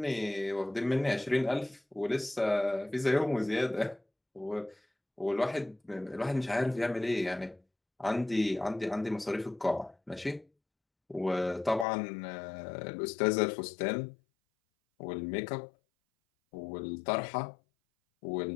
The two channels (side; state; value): right; drops out; at 11.9 s